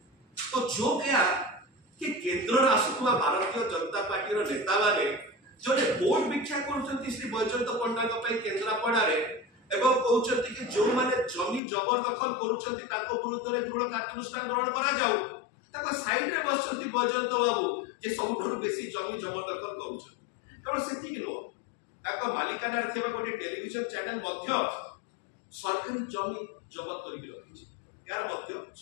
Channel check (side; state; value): right; drops out; at 11.6 s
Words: तो जो क्या कि केंद्र आसुवा भारतीय जनता पार्टी रो नेता माने जोने वोट भिक्षा करछंती श्री बैजयंत पट्टनायक पई केंद्रापड़ा रे एवं कहउछंती कि जो माने जमी जबरदखल करूछंती ताको विरुद्ध रे दृढ़ कार्यानुष्ठान ग्रहण करा जाऊ। ताको साइड रे बसछंती बैजयंत बाबू जे सबठुर बेसी जमी जबरदखल करूछंती। केवल सेति कि नो ताको मालिकाना रे थिबा गोटे टेलीविजन चैनल मध्य सरकारी जमी जबत करि रखिछि। यार मध्य